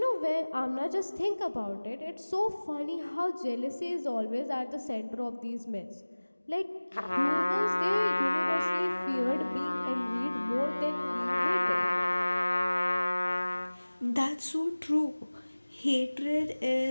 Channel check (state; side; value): inverted; both; correlation -1.00